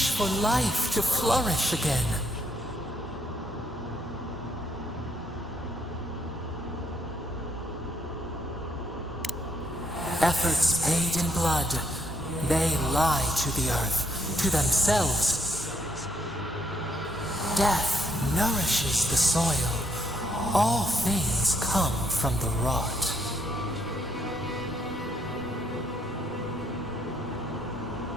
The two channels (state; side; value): normal; both; correlation 0.72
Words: for life to flourish again. Efforts paid in blood. They lie to the earth, to themselves. Death nourishes the soil. All things come from the rot.